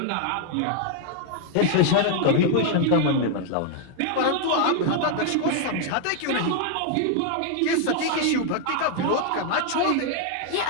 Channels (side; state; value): both; different; correlation 0.00